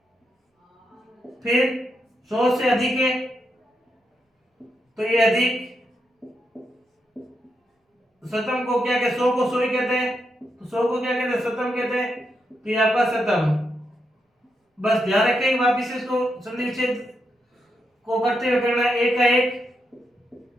फिर 100 से अधिक है तो ये अधिक, शतम को क्या कहते, 100 को 100 ही कहते हैं, तो 100 को क्या कहते हैं, शतम कहते हैं, तो ये आपका शतम। बस ध्यान रखें, वापिस इसको संधि विच्छेद को करते हुए करना है, 1 का 1,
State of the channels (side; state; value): both; normal; correlation 0.83